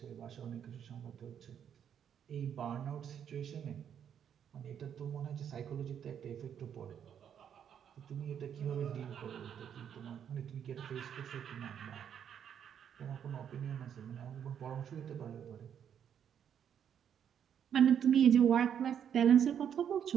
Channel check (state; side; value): quieter; left; 8.7 dB